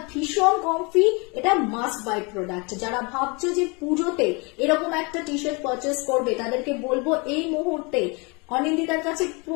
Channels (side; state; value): right; quieter; 29.9 dB